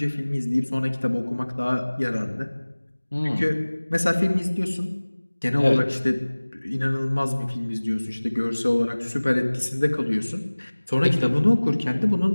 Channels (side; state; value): both; inverted; correlation -1.00